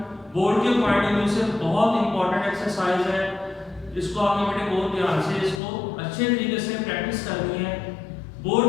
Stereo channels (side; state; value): right; drops out; at 5.6 s